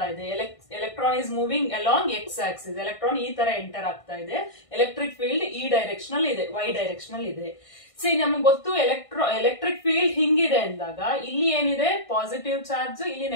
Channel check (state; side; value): late; right; 1.6 ms